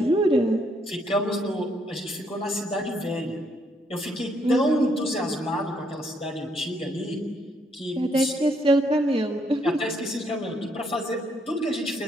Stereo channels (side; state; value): both; normal; correlation 0.72